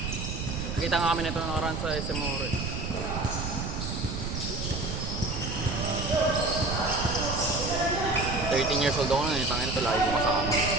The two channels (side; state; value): right; noise; rumble, 4 dB below the sound